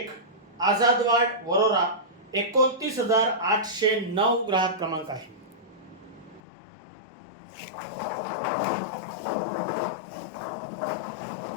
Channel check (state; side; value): drops out; right; at 6.4 s